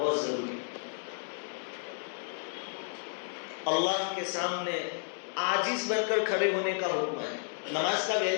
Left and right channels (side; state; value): right; silent; 56 dB below the other